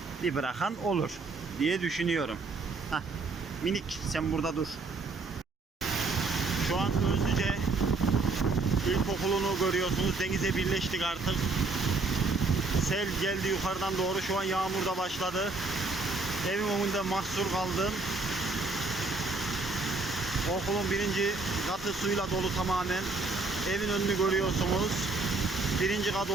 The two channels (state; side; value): quieter; left; 3.8 dB